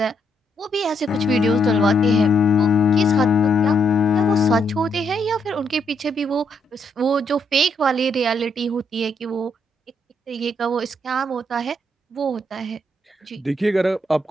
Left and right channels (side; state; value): both; normal; correlation 0.76